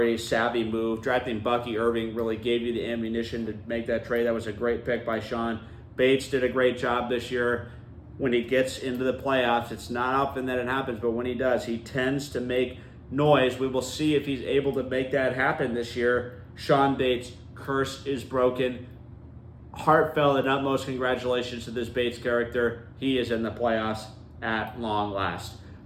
savvy move. Drafting Bucky Irving really gave you the ammunition to make that trade. That was a great pick by Sean. Bates did a great job this year. When he gets into the playoffs, it's not often that it happens, but when he does, he tends to make noise. We will see if he's able to make that happen this year. Sean Bates, curse is broken. Heartfelt and utmost congratulations to this Bates character. He is in the playoffs at long last.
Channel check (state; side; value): identical; both; correlation 1.00